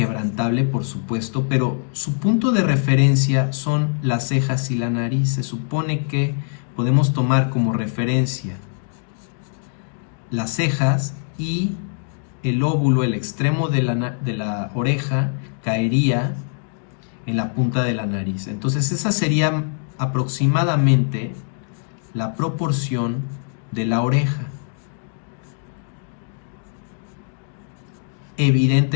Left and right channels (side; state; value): right; silent; digital silence